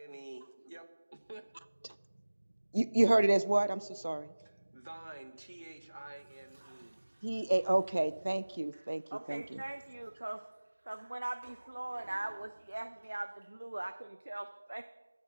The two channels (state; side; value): inverted; both; correlation -1.00